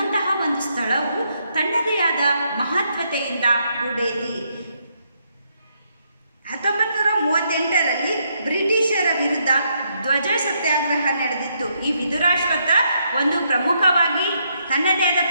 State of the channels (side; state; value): both; inverted; correlation -0.76